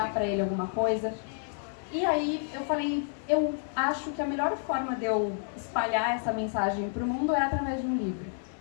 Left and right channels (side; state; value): right; silent; digital silence